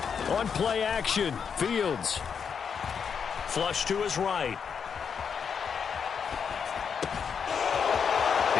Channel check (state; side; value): quieter; right; 6.7 dB